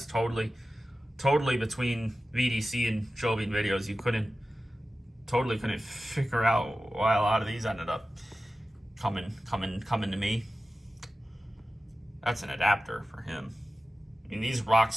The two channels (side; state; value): both; normal; correlation 0.94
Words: Totally between VDC and Joe Bean videos, you totally couldn't figure out why a lot of these ended up coming to me. That's an adapter for him. I mean, these Rock